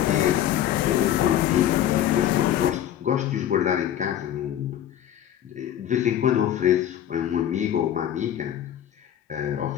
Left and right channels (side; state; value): right; quieter; 11.1 dB